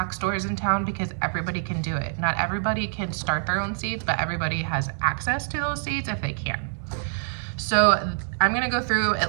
stores in town because everybody can do it. Not everybody can start their own seeds, but everybody has access to those seeds if they can. So I'm gonna go through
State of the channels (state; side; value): silent; left; digital silence